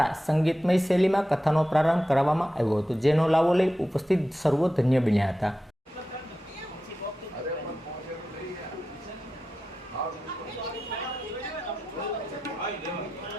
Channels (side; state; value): both; normal; correlation 0.91